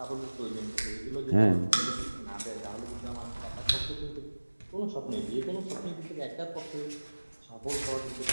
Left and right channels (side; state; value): both; inverted; correlation -1.00